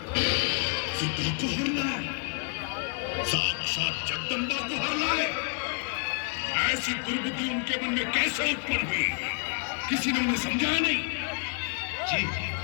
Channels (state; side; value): quieter; right; 38.6 dB